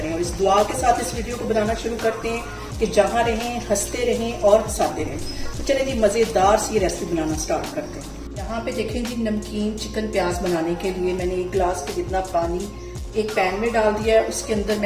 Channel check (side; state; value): both; identical; correlation 1.00